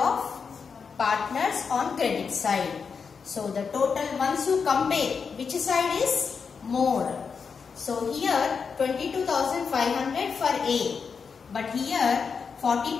partners on credit side. So the total, once you compare, which side is more? So here 22,500 for A, but here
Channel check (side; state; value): right; quieter; 5.7 dB